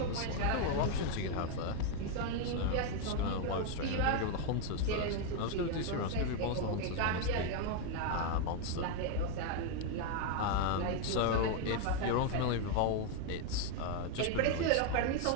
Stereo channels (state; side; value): different; both; correlation 0.01